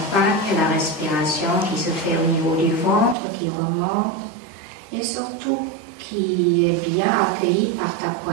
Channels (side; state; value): left; drops out; at 3.2 s